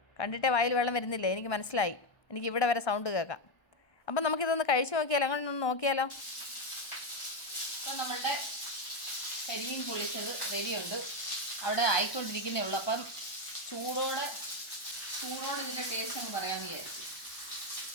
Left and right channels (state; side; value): late; right; 1.2 ms